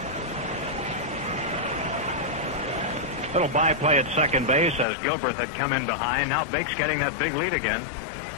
Little by-play at second base as Gilbert had come in behind. Now Bake's getting that big lead again.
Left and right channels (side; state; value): right; drops out; at 4.9 s